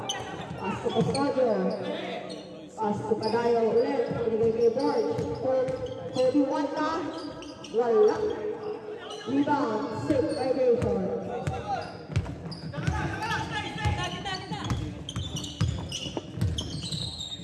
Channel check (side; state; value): both; identical; correlation 1.00